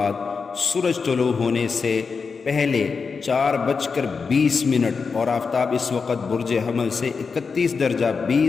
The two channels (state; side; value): quieter; right; 5.1 dB